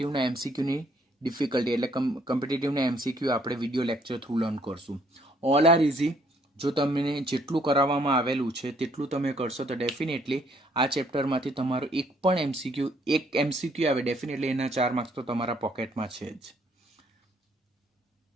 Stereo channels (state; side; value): normal; both; correlation 0.65